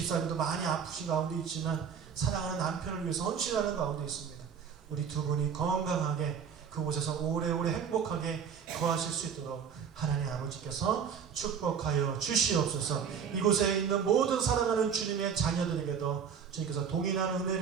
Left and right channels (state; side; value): quieter; left; 7.1 dB